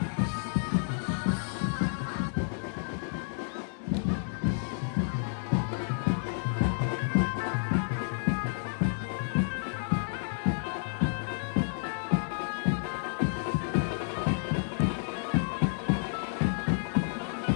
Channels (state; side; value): silent; right; 57 dB below the other